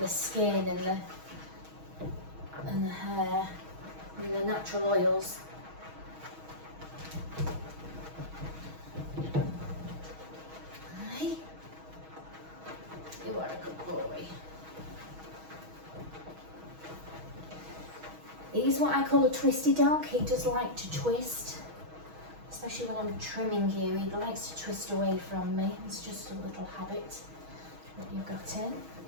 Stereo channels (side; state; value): left; late; 6.3 ms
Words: skin and the hair and the natural oils. Hey, you are a good boy. He's what I call a twisty dog. He does like to twist, especially when I'm trimming you. He likes to twist away from me. It's just a little habit that you've got in.